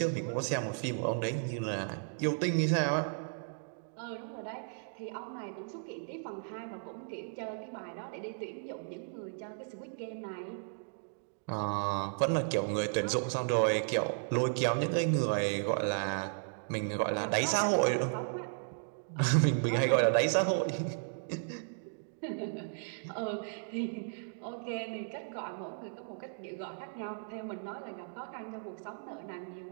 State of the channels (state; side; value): silent; left; digital silence